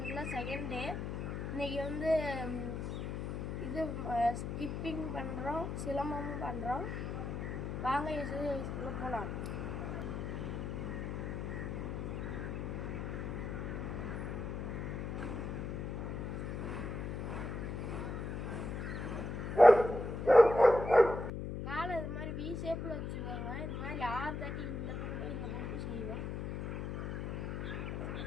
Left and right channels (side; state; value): left; noise; hum, 4 dB below the sound